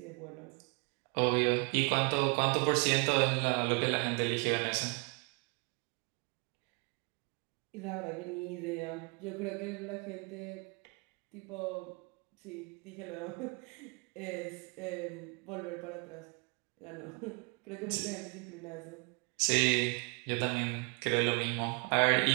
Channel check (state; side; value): quieter; left; 32.1 dB